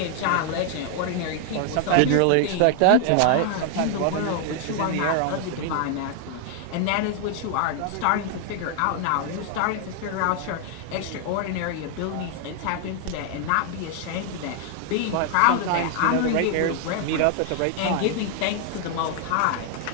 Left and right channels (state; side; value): different; both; correlation 0.00